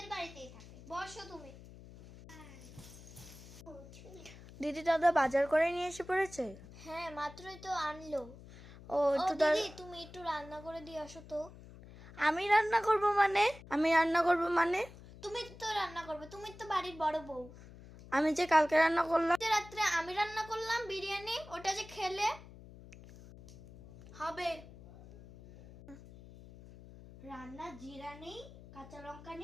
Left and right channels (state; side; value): noise; left; hum, 18 dB below the sound